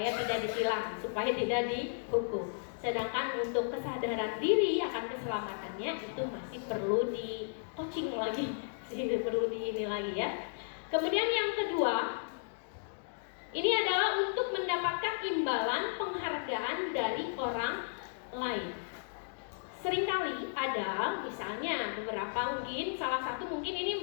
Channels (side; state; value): right; silent; digital silence